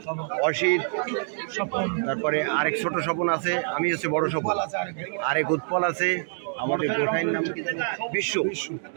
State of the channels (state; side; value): silent; left; digital silence